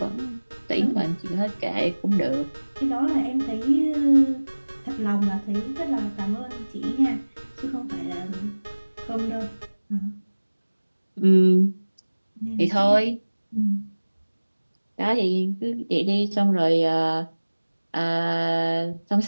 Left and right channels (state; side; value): inverted; both; correlation -1.00